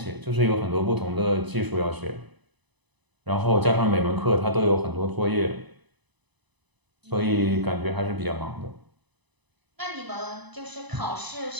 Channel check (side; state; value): left; late; 1.0 ms